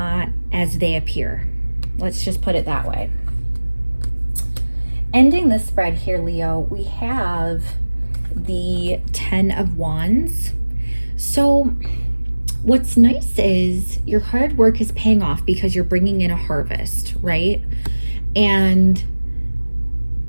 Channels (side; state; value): both; inverted; correlation -1.00